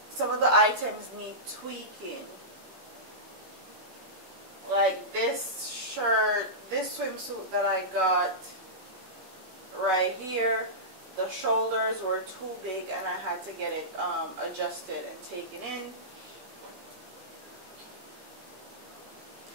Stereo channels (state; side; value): late; left; 16 ms